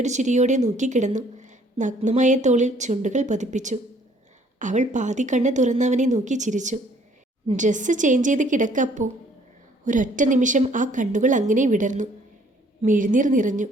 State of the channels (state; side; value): normal; both; correlation 0.60